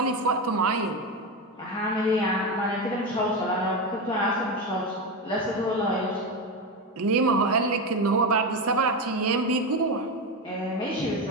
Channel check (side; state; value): both; normal; correlation 0.15